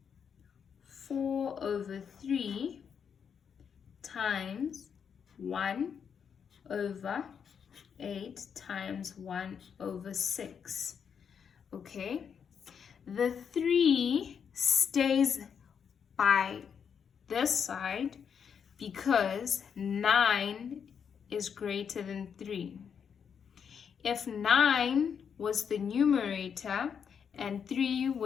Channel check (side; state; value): right; quieter; 7.2 dB